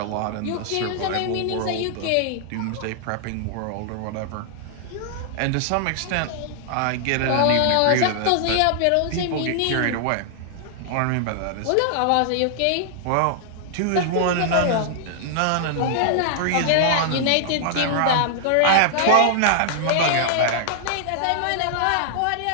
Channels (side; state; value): both; different; correlation -0.01